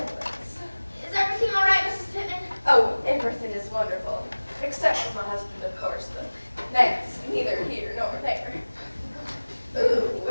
Is everything all right, Mrs. Pittman? Oh, everything is wonderful. Except for my husband, of course, but that's neither here nor there.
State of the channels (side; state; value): both; inverted; correlation -1.00